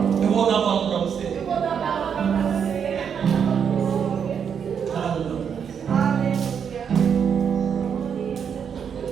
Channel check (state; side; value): quieter; left; 7.4 dB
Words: eu vou dar valor para você.